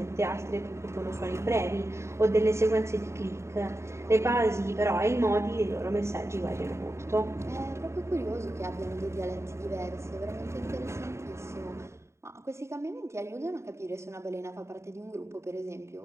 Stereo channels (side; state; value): left; late; 0.13 ms